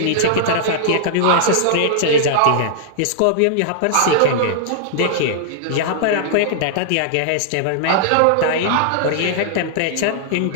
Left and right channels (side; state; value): both; different; correlation -0.01